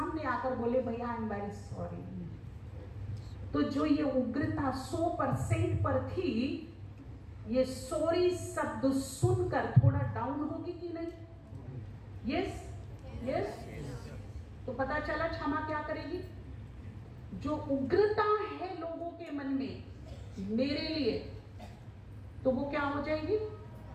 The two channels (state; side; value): identical; both; correlation 1.00